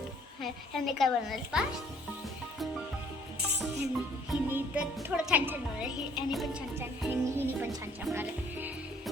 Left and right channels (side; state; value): both; normal; correlation 0.60